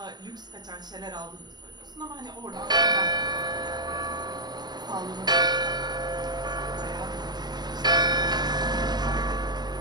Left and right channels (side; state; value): left; late; 0.20 ms